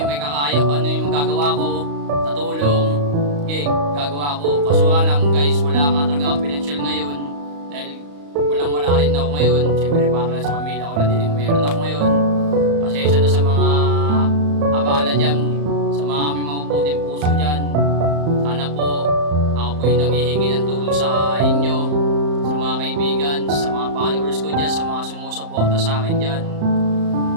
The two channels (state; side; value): late; left; 35 ms